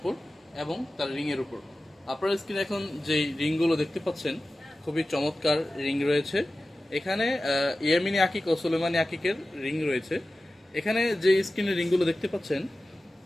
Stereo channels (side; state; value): both; normal; correlation 0.95